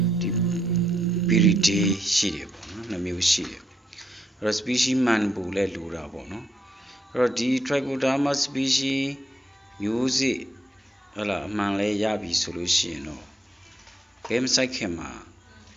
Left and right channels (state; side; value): normal; both; correlation 0.78